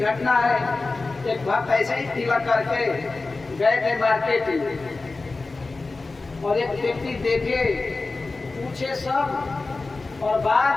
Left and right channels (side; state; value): right; quieter; 3.6 dB